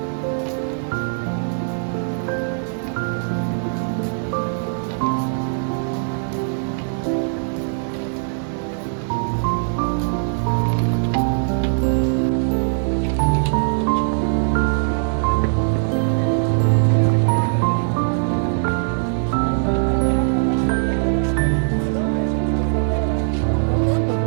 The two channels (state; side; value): silent; left; 65 dB below the other